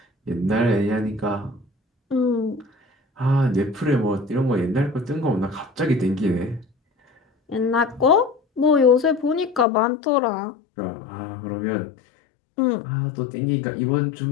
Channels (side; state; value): right; drops out; at 9.7 s